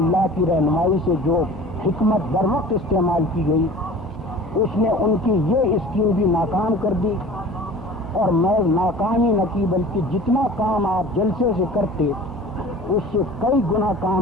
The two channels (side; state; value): both; normal; correlation 0.42